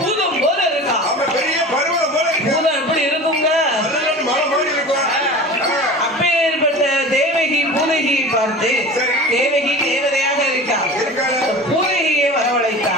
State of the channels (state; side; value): normal; both; correlation 0.36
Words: போல இருக்கா. பூதம் எப்படி இருக்குங்க? அப்பேற்பட்ட தேவகி பூதகியை பார்த்து தேவகி தேவதையாக இருக்கா. பூதகியை